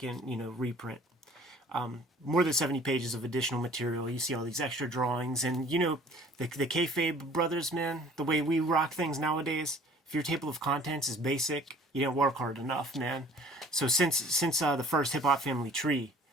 reprint. More than 70 pages of additional material. You see all these extra drawings, and the Kayfabe brothers, man. The way we rock things nowadays. If your table of contents is basic, you didn't work hard enough, man. So since the first Hip Hop Family tree,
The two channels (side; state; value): both; normal; correlation 0.51